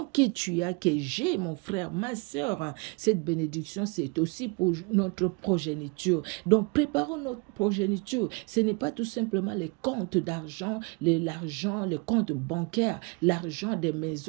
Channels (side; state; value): left; quieter; 30.5 dB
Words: que tu as, que j'ai, mon frère, ma soeur, cette bénédiction, c'est aussi pour notre progéniture. Donc, préparons notre progéniture. Ce n'est pas tout simplement les comptes d'argent, l'argent, les comptes bancaires, l'argent des